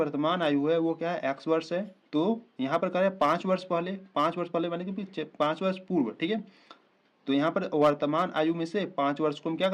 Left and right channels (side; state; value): both; identical; correlation 1.00